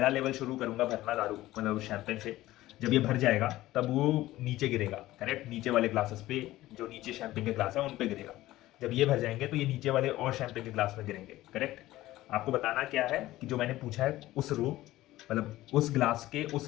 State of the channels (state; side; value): quieter; right; 16.3 dB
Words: लेवल शुरू करूंगा भरना दारू मतलब शैम्पेन से, जब ये भर जाएगा तब वो नीचे गिरेगा, करेक्ट, नीचे वाले ग्लासेस पे, जो नीचे शैम्पेन के ग्लास है उन पे गिरेगा। जब ये भर जाएंगे तो ये नीचे वाले और शैम्पेन के ग्लास में गिरेंगे, करेक्ट। आपको बताना क्या है कि जो मैंने पूछा है उस रो, मतलब उस ग्लास के उस